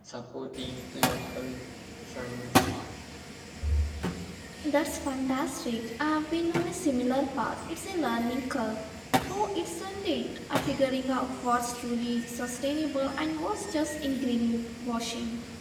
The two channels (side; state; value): both; identical; correlation 1.00